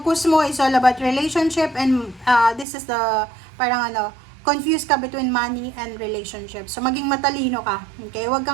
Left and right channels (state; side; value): drops out; left; at 2.7 s